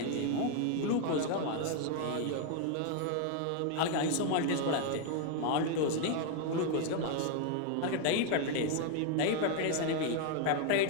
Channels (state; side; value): different; both; correlation 0.00